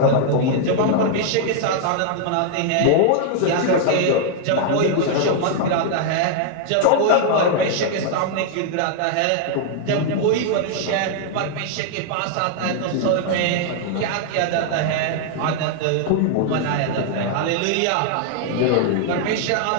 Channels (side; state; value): both; different; correlation -0.01